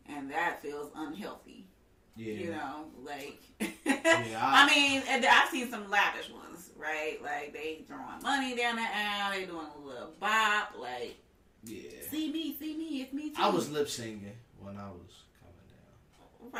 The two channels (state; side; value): identical; both; correlation 1.00